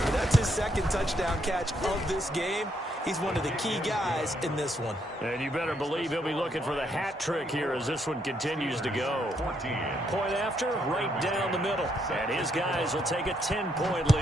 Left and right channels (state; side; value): normal; both; correlation 0.74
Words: But that's his 2nd touchdown catch of this game. He's one of the key guys in this one. And you better believe he'll be looking for the hat trick here as this one continues to go. Point after, right down the middle. And his guys will take a 10-point